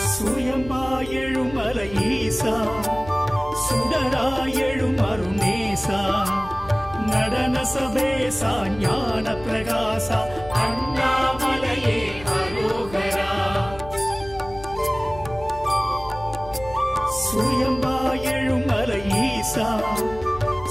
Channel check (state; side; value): noise; left; hum, 16 dB below the sound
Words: சுயம்பாயெழும் மலை ஈசா சுடராயெழும் அருணேசா நடன சபேசா ஞான பிரகாசா அண்ணாமலையே அரோகரா சுயம்பாயெழும் மலை ஈசா